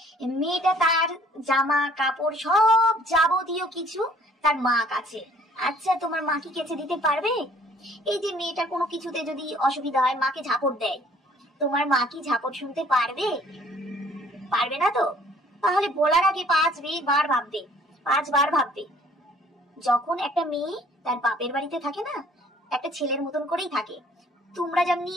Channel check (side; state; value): both; normal; correlation 0.57